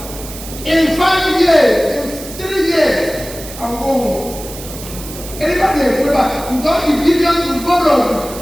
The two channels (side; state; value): right; noise; hiss, 13 dB below the sound